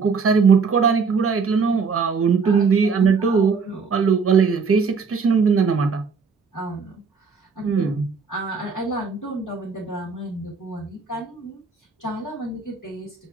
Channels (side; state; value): left; quieter; 5.2 dB